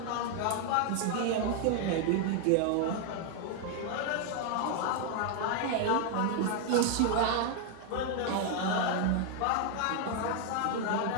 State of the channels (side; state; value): both; different; correlation 0.00